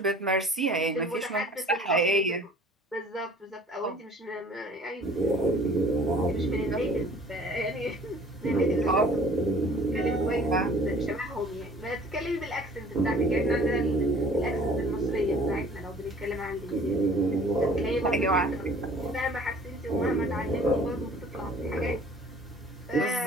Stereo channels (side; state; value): both; normal; correlation 0.50